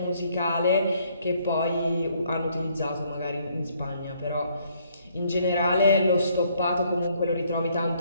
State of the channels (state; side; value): inverted; both; correlation -0.67